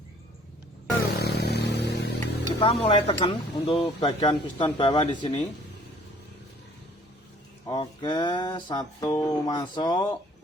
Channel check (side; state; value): both; normal; correlation 0.56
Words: Kita mulai tekan untuk bagian piston bawah di sini. Oke, satu masuk